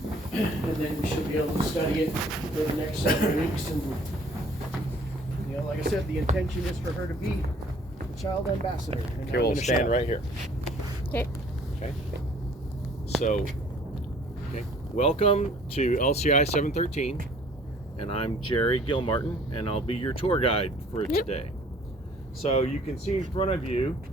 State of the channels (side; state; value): both; normal; correlation 0.56